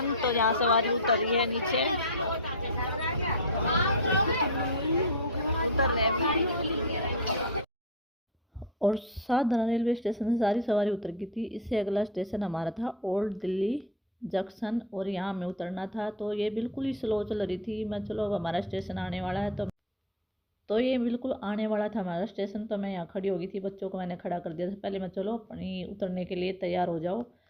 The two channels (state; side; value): normal; both; correlation 0.22